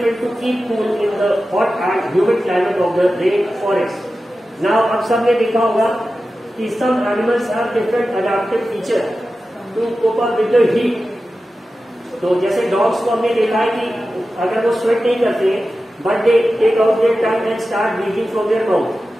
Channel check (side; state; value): both; normal; correlation 0.93